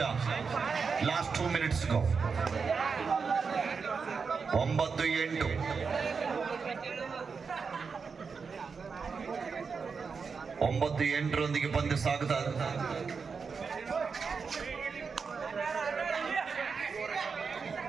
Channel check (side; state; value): left; quieter; 5.4 dB